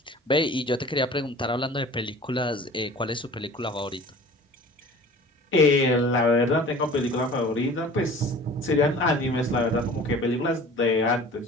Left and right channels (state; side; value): normal; both; correlation 0.44